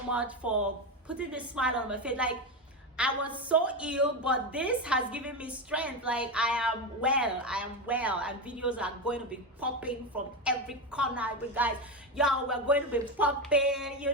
much for putting this smile on my face. Like, I was so ill, but this has given me strength. Like, I am well, and videos are going to be popping from every corner. But guys, y'all, we're going to be popping, you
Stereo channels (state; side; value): normal; both; correlation 0.15